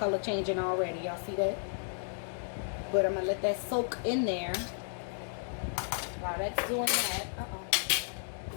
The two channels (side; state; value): right; silent; digital silence